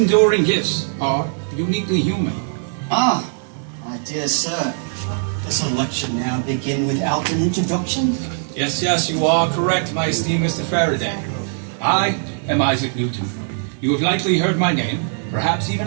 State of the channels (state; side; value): silent; left; digital silence